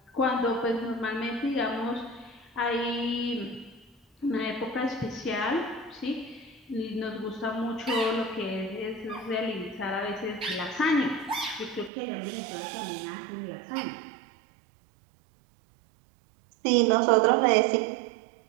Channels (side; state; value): left; drops out; at 11.9 s